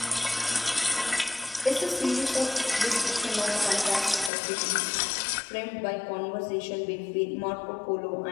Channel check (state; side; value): drops out; right; at 4.3 s